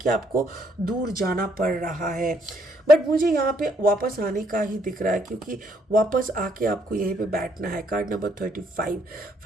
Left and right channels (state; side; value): normal; both; correlation 0.70